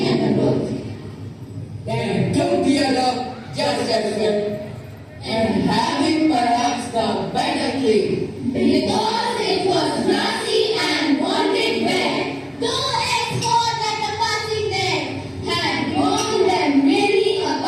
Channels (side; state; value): both; identical; correlation 1.00